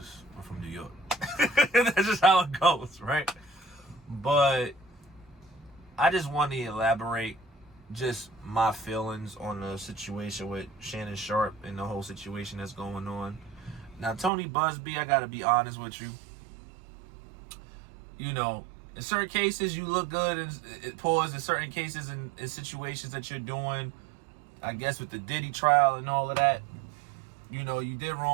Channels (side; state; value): left; drops out; at 14.3 s